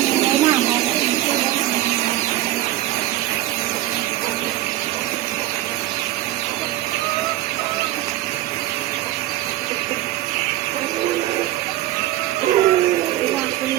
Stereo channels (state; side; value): quieter; left; 15.0 dB